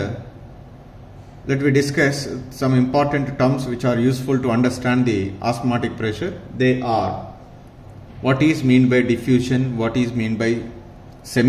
let me discuss some important terms which are useful to understand the osmotic pressure. They are: what is meant by diffusion, what is meant by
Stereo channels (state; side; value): identical; both; correlation 1.00